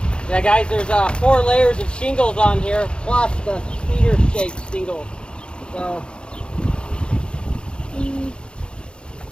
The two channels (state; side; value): late; right; 0.054 ms